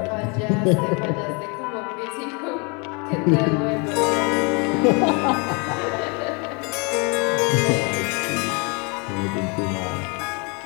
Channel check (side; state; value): right; quieter; 31.9 dB